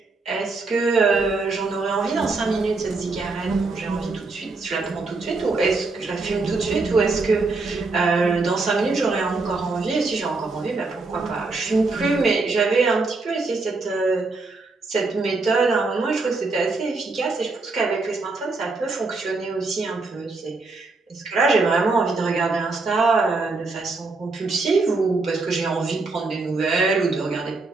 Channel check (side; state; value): left; quieter; 3.7 dB